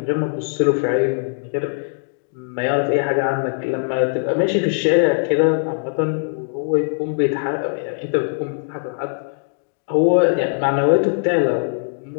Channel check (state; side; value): silent; right; digital silence